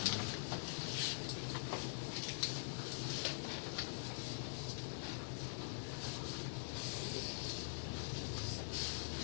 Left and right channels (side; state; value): right; silent; digital silence